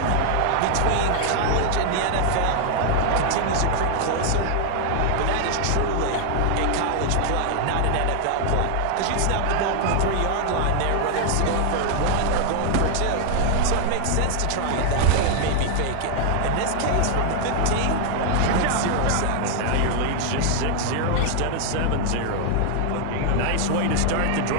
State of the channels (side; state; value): both; different; correlation 0.00